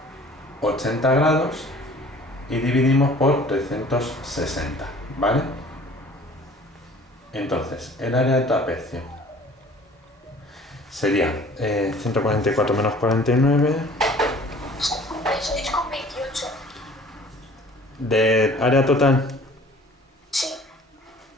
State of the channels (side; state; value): both; normal; correlation 0.50